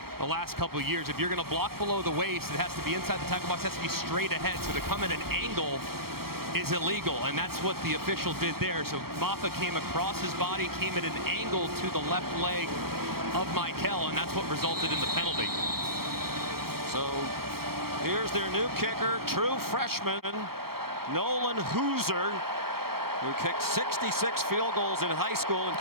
the last couple of years. If you're going to block below the waist, it has to be inside the tackle box, it has to be straight ahead. So to come at an angle is illegal, and that's what the official did there. So Maffa came across his body, came at an angle to the left leg of Michael, and that's what resulted in the penalty. So here's their new kicker, true freshman, Nolan Hooser, who kicked 66 field goals in high school in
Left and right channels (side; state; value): left; late; 0.94 ms